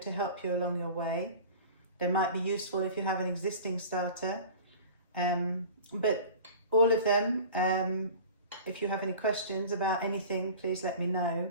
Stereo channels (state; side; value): inverted; both; correlation -0.40